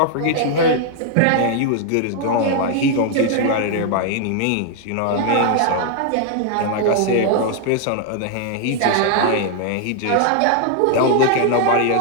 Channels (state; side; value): different; both; correlation 0.00